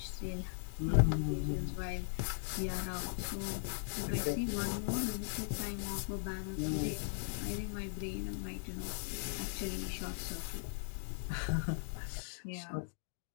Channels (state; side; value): silent; right; digital silence